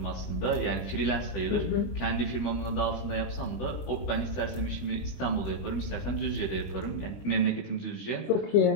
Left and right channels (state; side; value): late; right; 20 ms